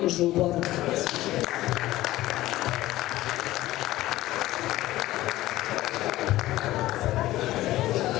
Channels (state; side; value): quieter; right; 16.1 dB